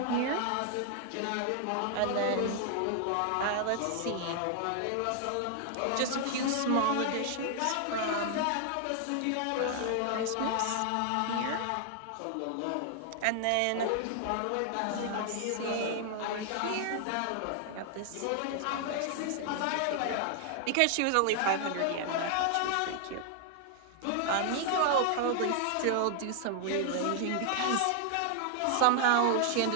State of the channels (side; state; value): both; different; correlation 0.00